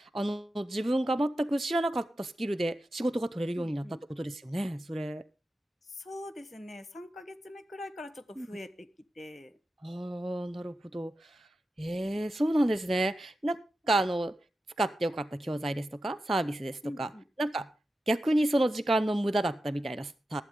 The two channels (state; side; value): normal; both; correlation 0.91